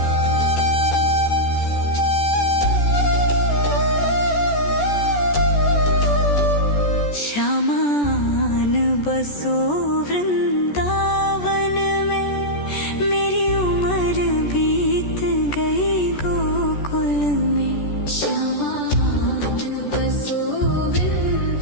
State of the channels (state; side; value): late; right; 14 ms